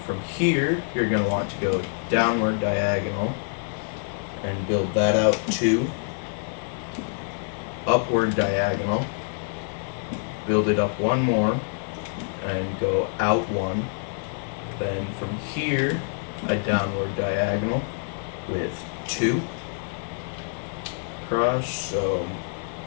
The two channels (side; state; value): right; silent; 61 dB below the other